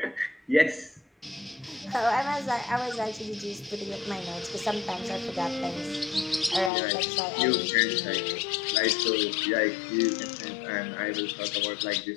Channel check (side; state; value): right; drops out; at 6.7 s